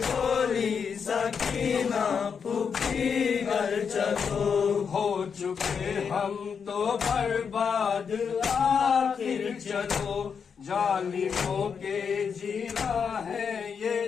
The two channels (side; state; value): right; quieter; 6.4 dB